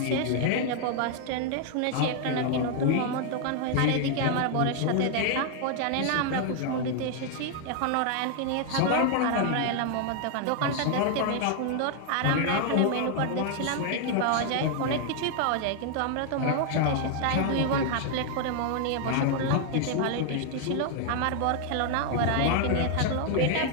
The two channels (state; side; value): different; both; correlation 0.00